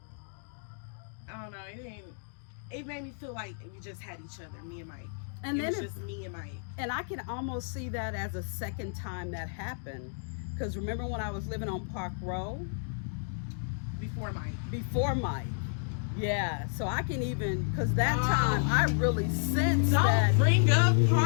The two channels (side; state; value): right; silent; digital silence